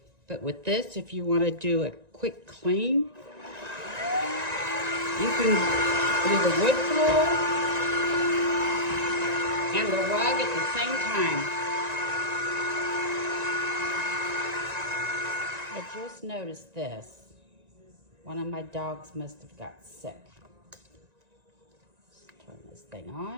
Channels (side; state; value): left; late; 1.9 ms